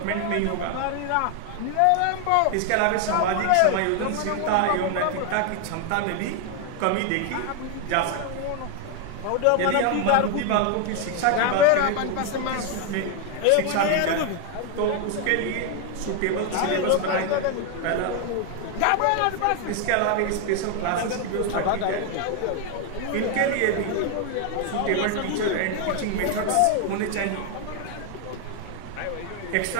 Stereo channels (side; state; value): both; different; correlation 0.01